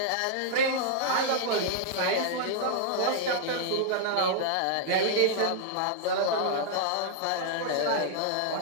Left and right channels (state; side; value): different; both; correlation -0.01